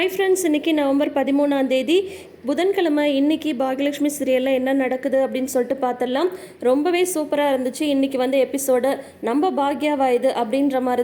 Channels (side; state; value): both; identical; correlation 1.00